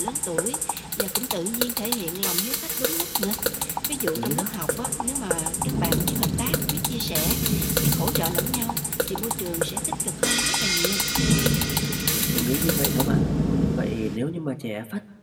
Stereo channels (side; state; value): both; identical; correlation 1.00